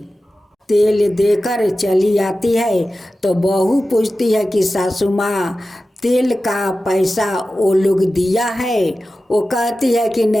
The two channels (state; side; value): normal; both; correlation 0.94